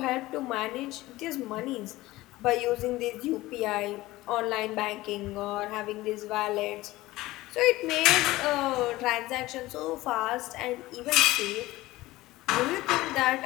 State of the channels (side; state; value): right; quieter; 18.2 dB